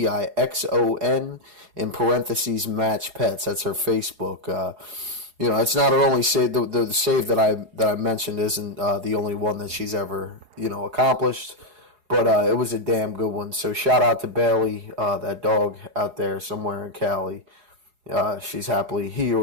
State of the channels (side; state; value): left; late; 4.8 ms